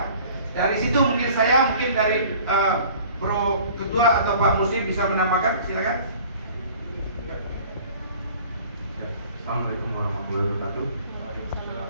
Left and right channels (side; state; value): both; inverted; correlation -0.49